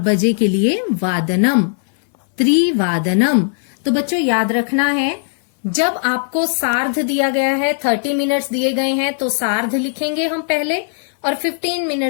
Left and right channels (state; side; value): silent; right; 61 dB below the other